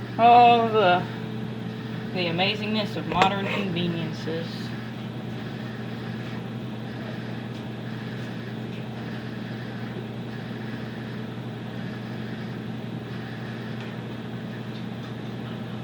Oh, the amazingness of modern conveniences.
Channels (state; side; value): identical; both; correlation 1.00